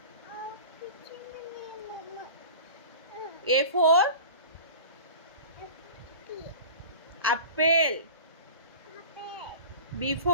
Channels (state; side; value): inverted; both; correlation -0.38